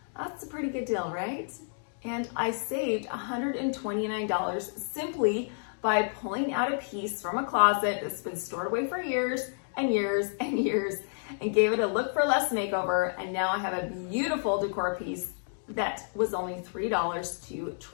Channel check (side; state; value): right; silent; digital silence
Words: That's a pretty good deal, right? And I saved $129 simply by pulling out a piece from a closet that's been stored away for years and years and years and gave it a look for less makeover. And now I have a beautiful decor piece that was only $3 to